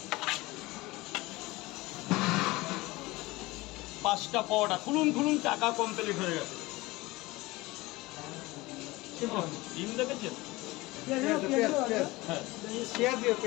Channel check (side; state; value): right; quieter; 21.0 dB